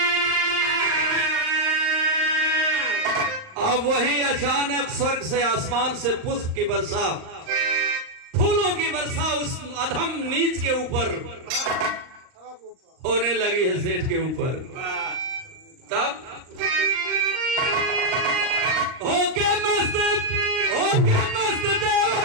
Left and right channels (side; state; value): left; late; 38 ms